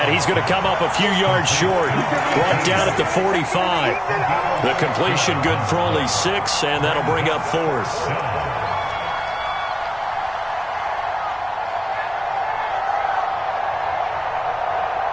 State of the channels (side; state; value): both; identical; correlation 1.00